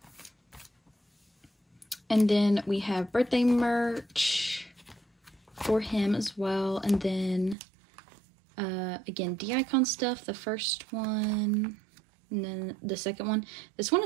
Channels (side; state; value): left; drops out; at 7.6 s